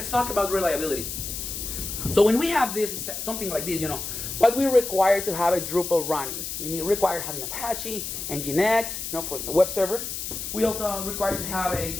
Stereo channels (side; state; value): left; noise; hiss, 6 dB below the sound